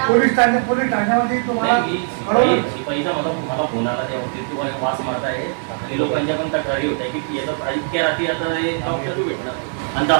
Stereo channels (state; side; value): silent; left; digital silence